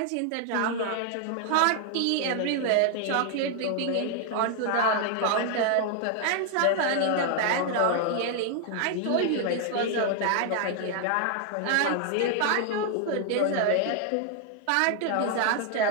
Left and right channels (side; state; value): both; different; correlation 0.00